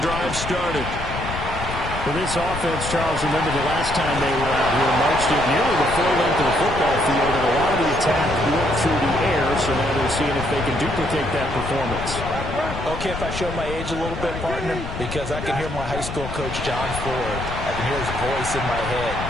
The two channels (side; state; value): left; noise; rumble, 7 dB below the sound